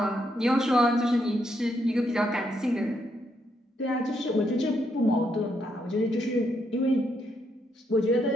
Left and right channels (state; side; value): normal; both; correlation 0.77